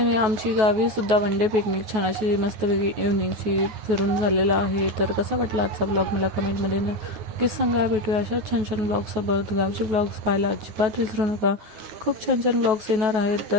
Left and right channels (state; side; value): late; left; 9.3 ms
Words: आमची गावी सुद्धा वन डे पिकनिक छान अशी मस्तपैकी इव्हनिंगची फिरून झालेला आहे. तर कसा वाटला आजचा ब्लॉग मला कमेंटमध्ये नक्कीच सांगा. भेटूया अशा छान छान ब्लॉगसोबत. गावचे ब्लॉग्स पाहायला अजिबात विसरू नका, खूप छान छान ब्लॉग्स येणार आहेत.